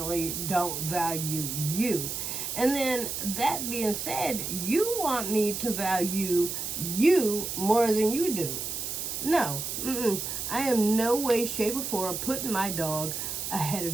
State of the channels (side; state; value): right; noise; hiss, 4 dB below the sound